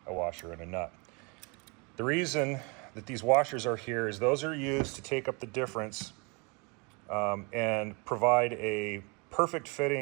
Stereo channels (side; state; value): left; quieter; 30.8 dB